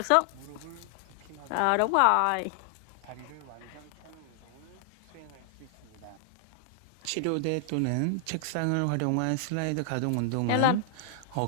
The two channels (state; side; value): different; both; correlation 0.00